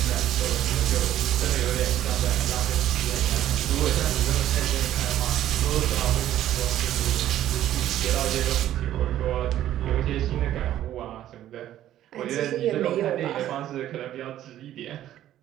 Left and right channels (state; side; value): quieter; left; 12.4 dB